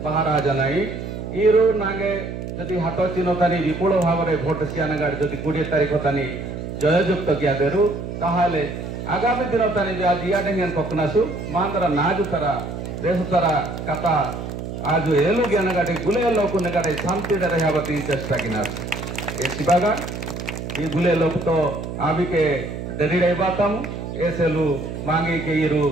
बाहर आ जानाई इरो नागे जदि हाथ चिन्ह तानी विपुल भाव में भोट सियानगाड़ जदि 20 तारीख तानी जययुक्त किया देरु ताहाले आगामी दिन तानी जो आज इयाडेंगन कोकनासु मांदरा नाजु तरा देश तरा कथा आज एलु ज्ञानगाटे गुले लोक नगाटे शांति रहया बती चेष्टा किनास ए सिबागा ये गुले लोक तो आबी के डेरी रे बातम एसेलु मांगी के इरु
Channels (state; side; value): noise; right; hum, 7 dB below the sound